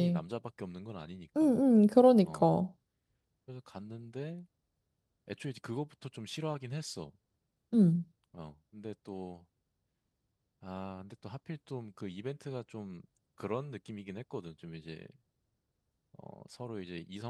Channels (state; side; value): identical; both; correlation 1.00